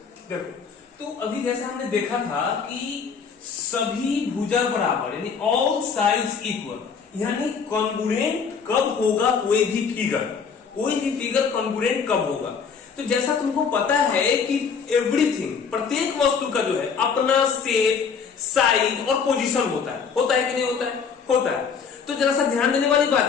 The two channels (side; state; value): right; quieter; 6.1 dB